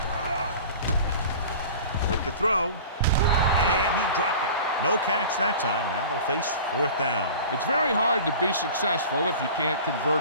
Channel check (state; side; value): inverted; both; correlation -0.39